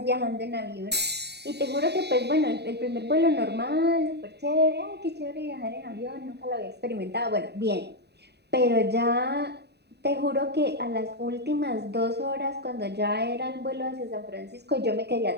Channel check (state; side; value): late; left; 0.48 ms